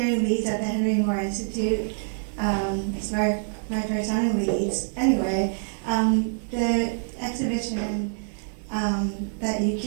in Leeds at the Henry Moore Institute. It's my first time in Leeds. Anyway, the exhibition that you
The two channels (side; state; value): left; silent; 58 dB below the other